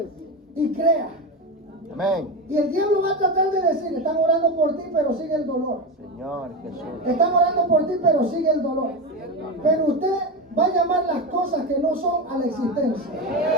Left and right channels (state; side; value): normal; both; correlation 0.17